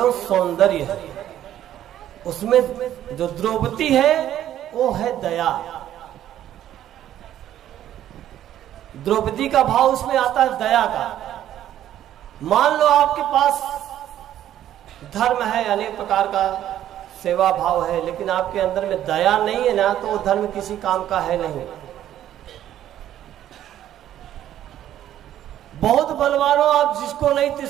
सौंदर्य है। उसमें जो द्रौपदी है वो है दया। द्रौपदी का भाव उसमें आता है दया का। मान लो आपके पास धर्म है, अनेक प्रकार का सेवा भाव है, लेकिन आपके अंदर में दया नहीं है ना, तो वो धर्म किसी काम का है नहीं। बहुत बलवान हो आप, जिसको नहीं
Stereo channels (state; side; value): quieter; left; 11.7 dB